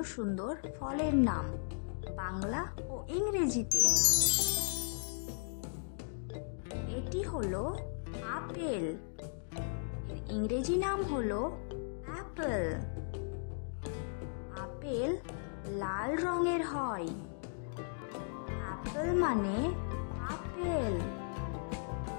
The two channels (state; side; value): silent; right; digital silence